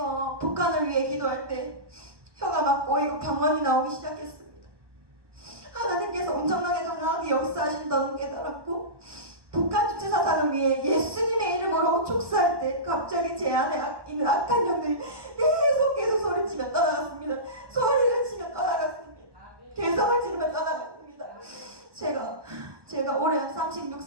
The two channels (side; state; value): left; late; 1.2 ms